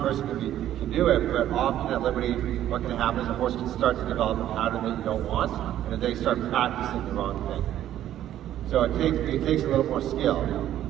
can do it, but often at Liberty, what can happen is a horse can start to develop a pattern that you don't want, and then they start practicing the wrong thing. So it takes a little more skill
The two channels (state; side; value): quieter; left; 12.0 dB